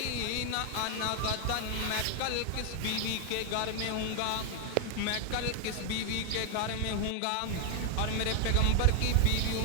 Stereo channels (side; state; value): both; different; correlation 0.00